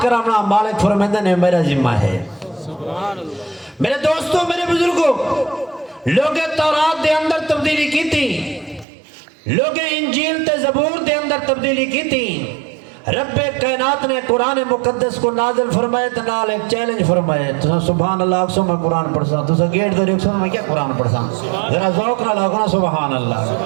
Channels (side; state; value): left; drops out; at 8.8 s